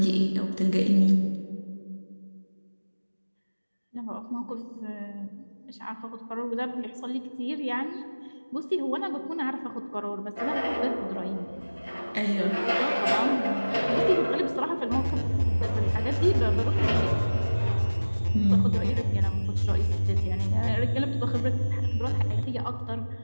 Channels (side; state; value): both; inverted; correlation -1.00